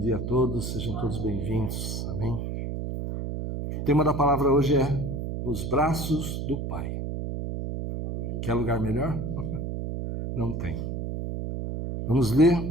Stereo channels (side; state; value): right; noise; hum, 4 dB below the sound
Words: a todos, sejam todos bem-vindos, amém? O tema da palavra hoje é nos braços do Pai. Quer lugar melhor? Não tem. Vamos ler